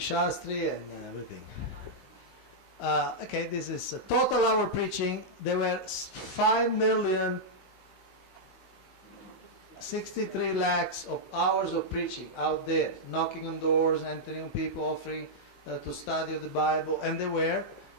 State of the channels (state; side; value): late; right; 15 ms